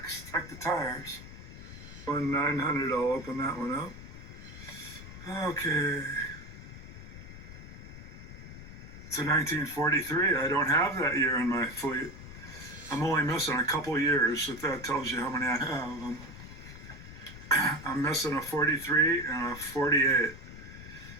check the tires. 900, I'll open that one up. Okay. It's a 1943. I don't have that year in my fleet. I'm only missing a couple years, if that tells you how many I have. I'm missing a 43 and a 48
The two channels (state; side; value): noise; left; rumble, 14 dB below the sound